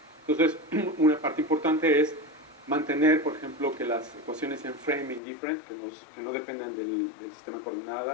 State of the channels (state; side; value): drops out; right; at 5.2 s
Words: Entonces, una parte importante es mantener, por ejemplo, que las ecuaciones sean frame indifferent, que no dependan del sistema de